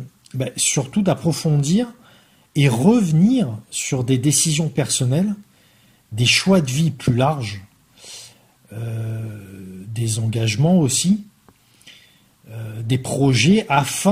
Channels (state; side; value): identical; both; correlation 1.00